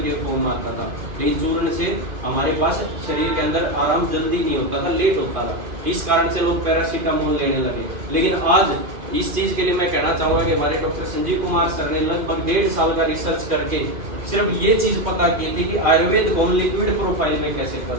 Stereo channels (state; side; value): late; left; 2.3 ms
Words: के फॉर्म में आता था, लेकिन चूर्ण से हमारे पास शरीर के अंदर आराम जल्दी नहीं होता था, लेट होता था। इस कारण से लोग पैरासीटामोल लेने लगे। लेकिन आज इस चीज के लिए मैं कहना चाहूंगा कि हमारे डॉक्टर संजीव कुमार सर ने लगभग 1.5 साल का रिसर्च करके सिर्फ ये चीज पता की थी कि आयुर्वेद को लिक्विड प्रोफाइल में कैसे